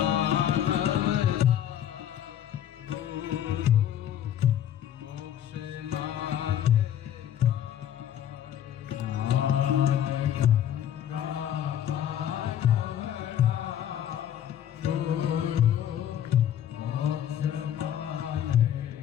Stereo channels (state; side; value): quieter; right; 10.4 dB